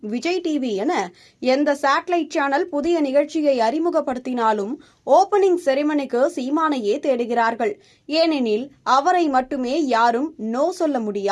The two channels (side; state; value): both; identical; correlation 1.00